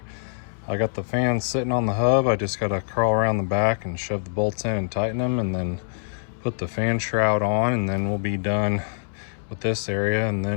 I got the fans sitting on the hub. I just gotta crawl around the back and shove the bolts in and tighten them and then put the fan shroud on, and then we'll be done with this area, and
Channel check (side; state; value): right; silent; 62 dB below the other